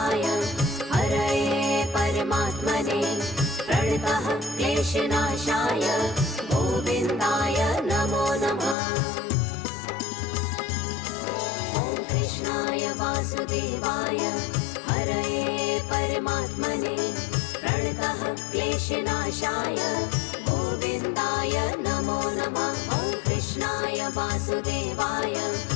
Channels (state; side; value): drops out; right; at 8.8 s